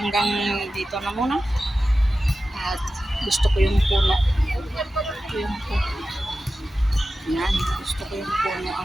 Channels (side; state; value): both; normal; correlation 0.93